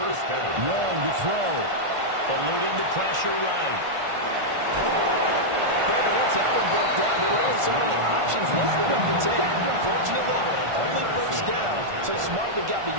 down. Young to throw. Eluding the pressure right. Brandon, once that one broke down, there were only so many options left for them to take. Fortunately, only first down, so smartly got the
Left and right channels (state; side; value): late; left; 1.5 ms